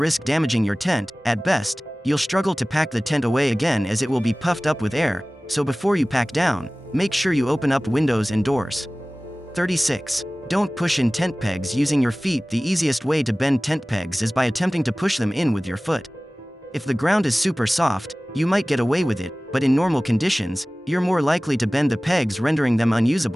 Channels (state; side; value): normal; both; correlation 0.98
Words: damaging your tent. At best, you'll struggle to pack the tent away again as it will be puffed up with air, so before you pack down, make sure you open up windows and doors. 36. Don't push in tent pegs using your feet. The easiest way to bend tent pegs is by attempting to push them in with your foot. If the ground is super soft, you might get away with it, but in normal conditions, you're more likely to bend the pegs, rendering them